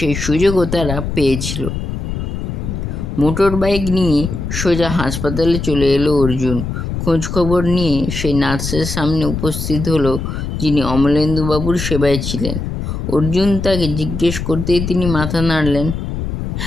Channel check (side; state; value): left; noise; rumble, 4 dB below the sound